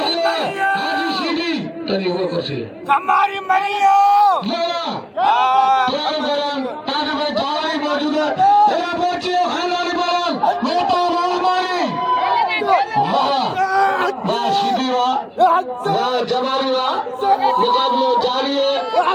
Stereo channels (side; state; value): both; identical; correlation 1.00